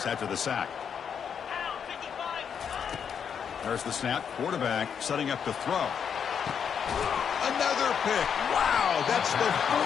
after the sack. There's the snap. Quarterback setting up to throw. Another pick. Wow, that's the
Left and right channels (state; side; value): quieter; right; 7.4 dB